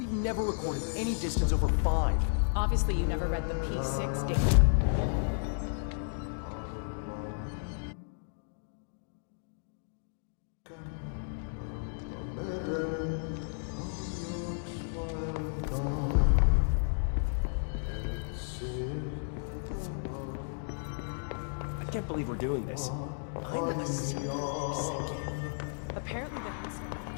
never recorded any distance over 5. Obviously, you never read the P6 data. can't believe we're doing this. I'm a secret second. Apparently the house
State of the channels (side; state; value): right; silent; digital silence